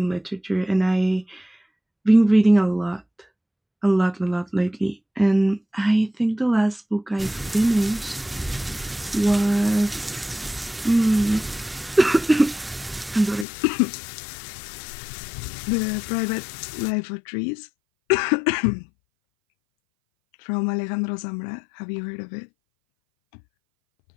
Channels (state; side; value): drops out; right; at 13.5 s